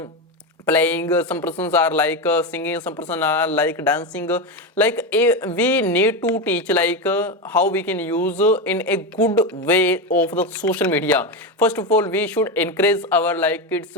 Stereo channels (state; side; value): normal; both; correlation 0.14